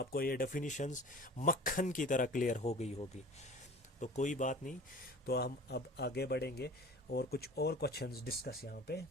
ये डेफिनेशंस मक्खन की तरह क्लियर हो गई होगी। तो कोई बात नहीं, तो हम अब आगे बढ़ेंगे और कुछ और क्वेश्चंस डिस्कस यहाँ पे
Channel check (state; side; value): normal; both; correlation 0.42